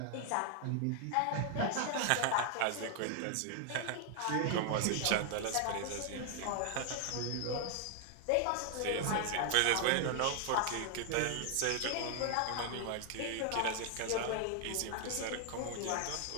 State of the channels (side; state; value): both; different; correlation 0.00